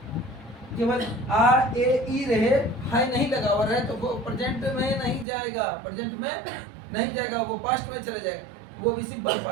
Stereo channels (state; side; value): drops out; left; at 5.2 s